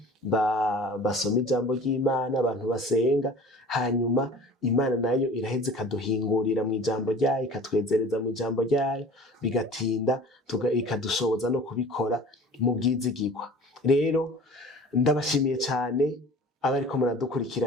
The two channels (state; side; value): normal; both; correlation 0.43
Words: basoma ijambo ry'Imana abantu basenga hanyuma Imana nayo iraheze ikaduhingurira mu ijambo ryayo ikatwezereza mu ijambo ryayo bigatinda ikadushoboza no kubikora mu bwizigirwa rero ndabashimiye cyane abariko